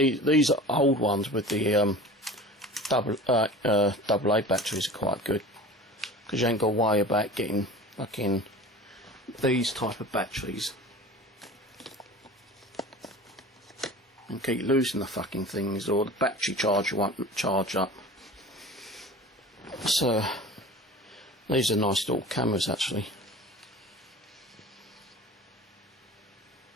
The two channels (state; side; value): normal; both; correlation 0.38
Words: are old ones with the AA batteries are quite good, because you ain't got to worry about getting fucking these type of batteries and keep losing the fucking things, or the battery charger won't charge up. So these are nice little cameras actually.